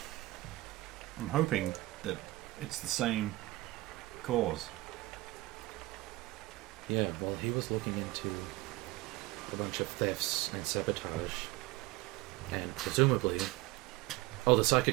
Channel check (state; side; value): quieter; left; 19.6 dB